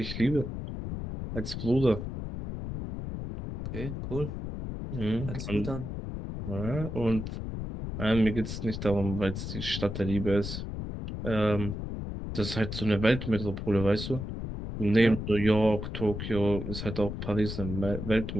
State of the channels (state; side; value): noise; left; rumble, 6 dB below the sound